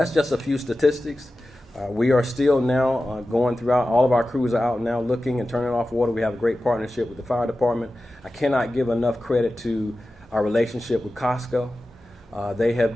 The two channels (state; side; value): normal; both; correlation 0.94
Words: just a few statistics. We are still now going throughout. All of our crews are out now looking and turning off water. We have a great partnership with the fire department. I cannot give enough credit to our relationship with Costco. They